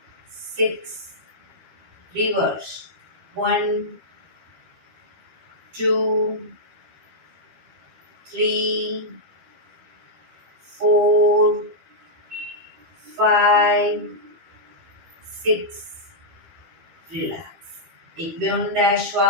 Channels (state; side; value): late; left; 12 ms